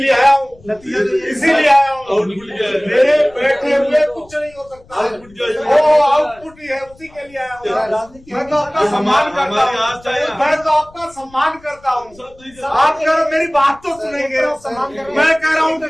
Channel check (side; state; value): left; noise; rumble, 26 dB below the sound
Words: आया हूँ, नतीजा इसीलिए आया हूँ। मेरे बैठे हुए कुछ नहीं हो सकता, वो आउटपुट ही है, उसी के लिए आया हूँ। मैं तो आपका सम्मान करता हूँ, मैं तो आपका सम्मान करता हूँ। आप अगर मेरी बात तो सुनेंगे, मैं कह रहा हूँ